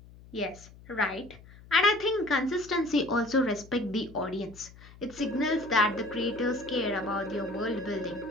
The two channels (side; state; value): left; noise; hum, 21 dB below the sound